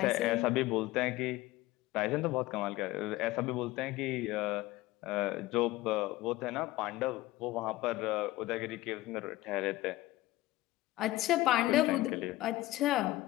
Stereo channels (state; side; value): quieter; right; 17.7 dB